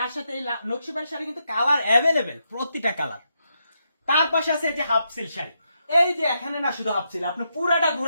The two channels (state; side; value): inverted; both; correlation -0.82